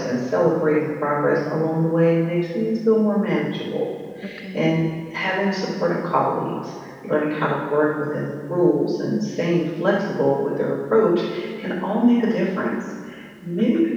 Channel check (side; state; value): both; identical; correlation 1.00